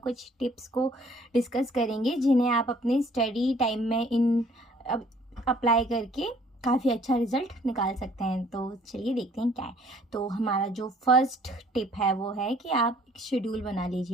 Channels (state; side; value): normal; both; correlation 0.59